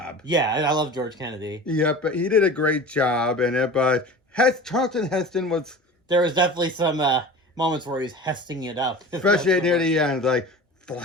Yeah, I love George Kennedy. Yeah, but he did a great job in it. But Charlton Heston was. There was definitely some moments where he's hesting it up, especially near the end, like.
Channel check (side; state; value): both; normal; correlation 0.36